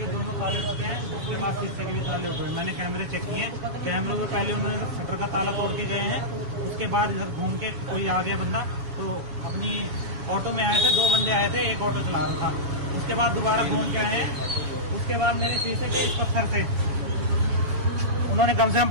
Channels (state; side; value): late; left; 7.2 ms